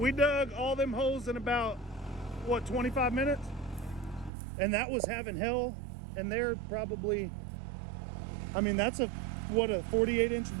dug all them holes in about, what, 25 minutes? And that was having hell. And they're probably, I mean, that's a 48-inch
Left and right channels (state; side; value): drops out; left; at 4.3 s